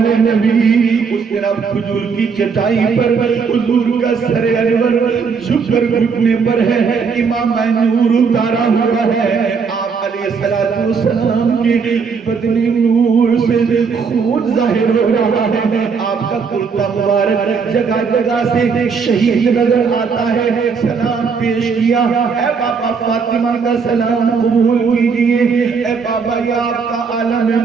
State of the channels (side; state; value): left; quieter; 5.6 dB